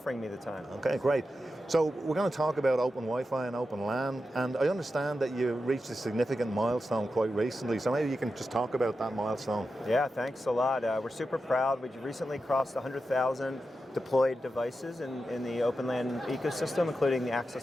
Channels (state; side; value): normal; both; correlation 0.90